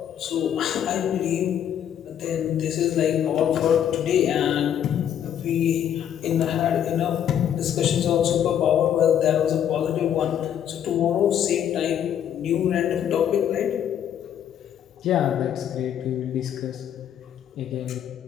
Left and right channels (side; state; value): right; quieter; 9.6 dB